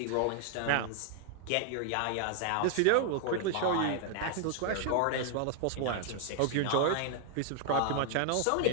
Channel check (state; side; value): different; both; correlation 0.00